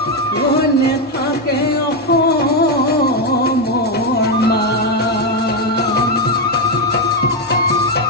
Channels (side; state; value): both; normal; correlation 0.06